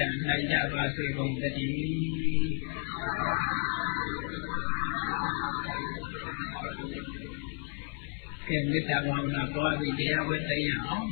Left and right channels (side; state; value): right; quieter; 39.9 dB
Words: ံနိုင်ကြပါစေကုန်သတည်းကဲမေတ္တာဘာဝနာပွားပြီးတရားဝဲသိရအောင်